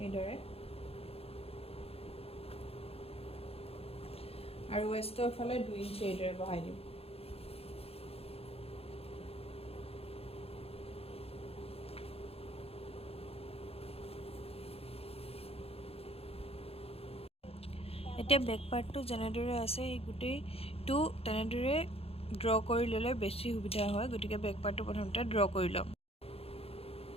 এইদৰে আৰু ৱেষ্টৰ ফালে 2 ইঞ্চি এইদৰে বহাই দিম এতিয়া বেক পাৰ্টটো যেনেদৰে আছে এই গোটেইটো তেনেদৰে ড্ৰ কৰি ল'লে বেছি সুবিধা হয় গতিকে বেক পাৰ্টটো প্ৰথমতে ড্ৰ কৰি ল'ম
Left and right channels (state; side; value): late; right; 0.28 ms